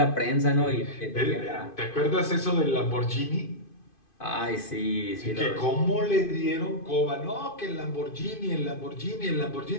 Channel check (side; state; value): right; late; 2.5 ms